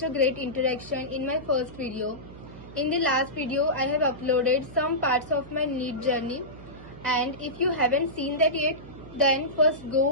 a great interaction in my first video. In the last video, I have uploaded some parts of my NEET journey, and if you haven't seen that yet, then first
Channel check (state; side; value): noise; right; hum, 17 dB below the sound